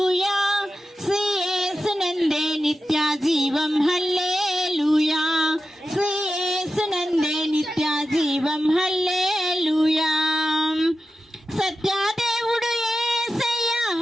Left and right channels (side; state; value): both; normal; correlation 0.92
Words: శ్రీ యేసునందే నిత్య జీవం హల్లెలూయా, శ్రీ యేసునందే నిత్య జీవం హల్లెలూయా, సత్యదేవుడు యేసయ్య